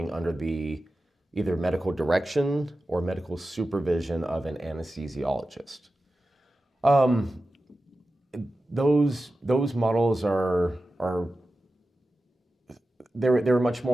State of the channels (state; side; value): normal; both; correlation 0.94